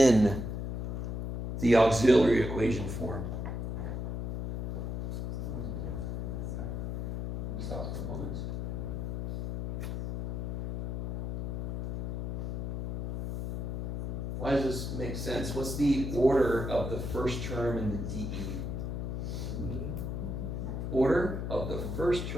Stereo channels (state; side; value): noise; left; hum, 3 dB below the sound